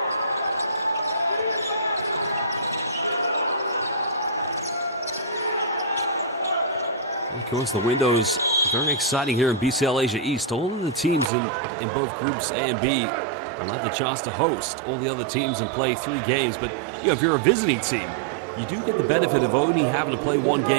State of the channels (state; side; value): drops out; left; at 11.3 s